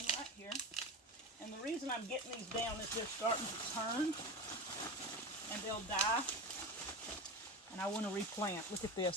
right here. And the reason I'm getting these down is they're starting to turn and they'll die. And I want to replant. Look at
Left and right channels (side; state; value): both; normal; correlation 0.25